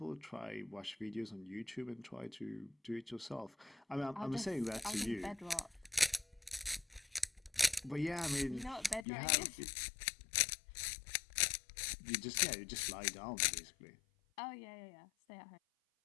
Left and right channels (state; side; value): drops out; right; at 9.1 s